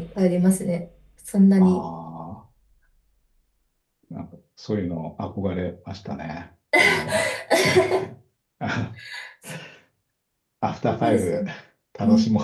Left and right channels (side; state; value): both; identical; correlation 1.00